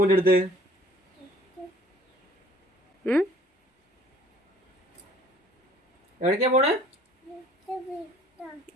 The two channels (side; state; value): both; normal; correlation 0.54